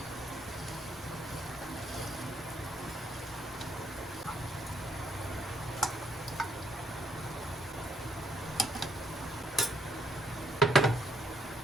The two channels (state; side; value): normal; both; correlation 0.72